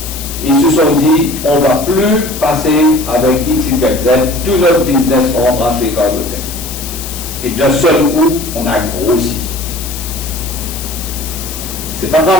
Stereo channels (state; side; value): noise; left; hiss, 9 dB below the sound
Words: ils se sont dit, on ne va plus passer avec XYZ, tout notre business rentrera chez Cargotec. Et d'un seul coup, on a grossi. C'est pas